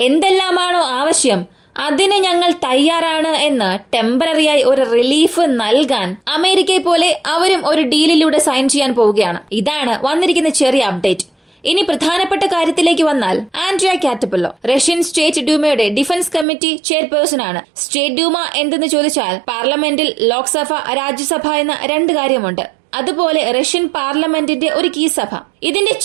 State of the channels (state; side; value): drops out; left; at 16.4 s